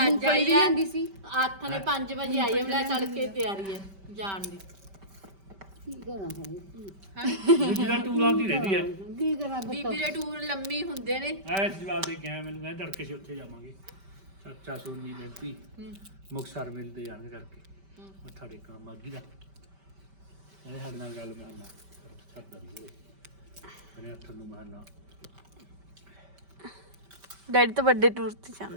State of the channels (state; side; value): late; left; 5.1 ms